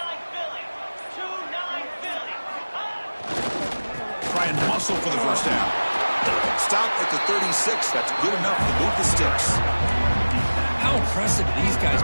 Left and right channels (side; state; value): both; inverted; correlation -1.00